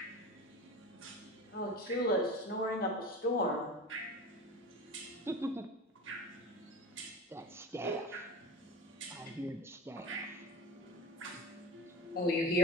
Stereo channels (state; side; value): normal; both; correlation 0.31